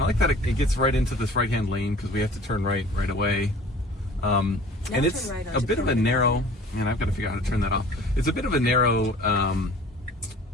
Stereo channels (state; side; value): normal; both; correlation 0.47